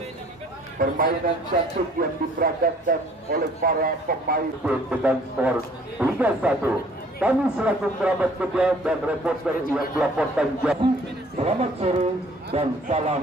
Permainan cantik yang diperagakan oleh para pemain dengan skor 3-1. Kami selaku kerabat kerja dan reporter yang melaporkan jadi selamat sore dan salam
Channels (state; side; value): normal; both; correlation 0.56